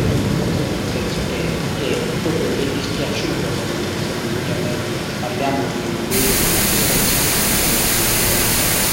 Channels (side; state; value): both; identical; correlation 1.00